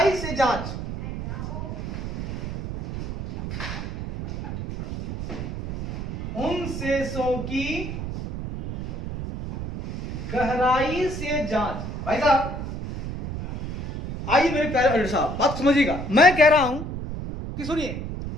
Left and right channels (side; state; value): right; noise; rumble, 6 dB below the sound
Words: से जांच, उन शेषों की गहराई से जांच। भाई साहब आइए मेरे प्यारे अल्टर साहब, बात समझिएगा। मैं कह रहा हूं कि सुनिए,